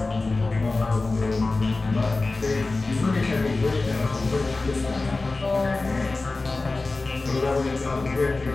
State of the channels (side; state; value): right; quieter; 3.4 dB